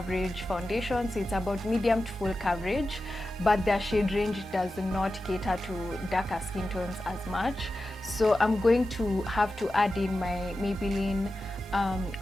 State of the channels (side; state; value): both; normal; correlation 0.92